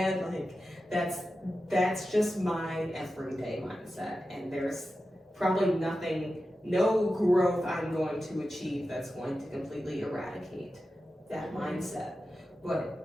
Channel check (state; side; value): normal; both; correlation 0.92